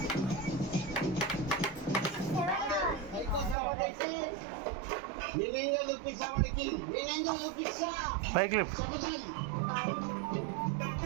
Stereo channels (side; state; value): left; drops out; at 3.6 s